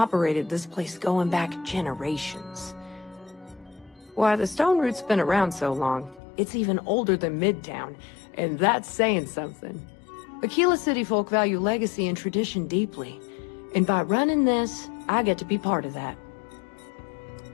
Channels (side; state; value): right; drops out; at 6.2 s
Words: this place going back generations. Why, the Stone Root's been around so long, it's even older than Midtown, and that's saying something. Aquila City folk value legacy and tradition deeply, and by running this, I get to be part of that.